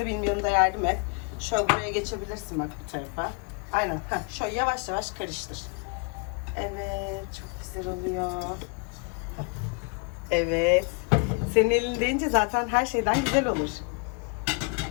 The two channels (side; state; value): right; quieter; 34.3 dB